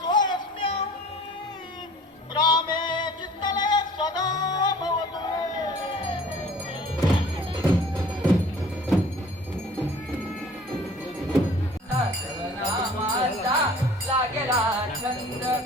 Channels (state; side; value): normal; both; correlation 0.48